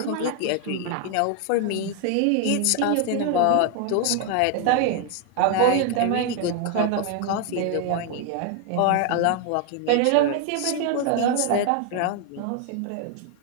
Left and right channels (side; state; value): both; different; correlation 0.01